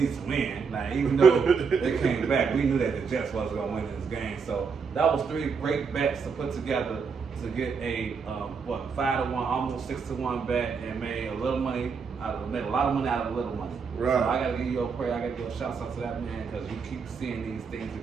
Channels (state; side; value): quieter; left; 5.6 dB